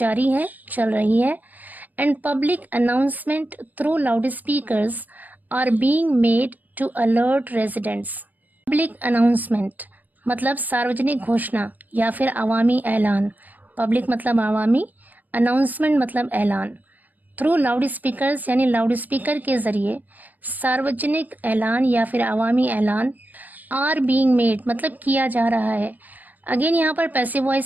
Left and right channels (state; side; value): late; left; 0.084 ms